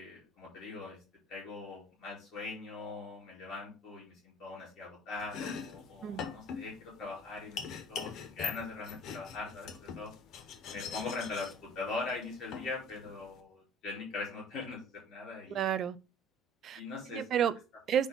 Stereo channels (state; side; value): normal; both; correlation 0.49